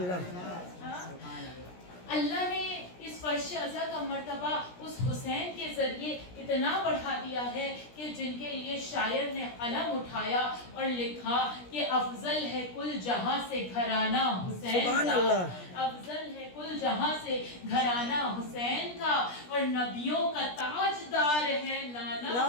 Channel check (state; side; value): late; right; 17 ms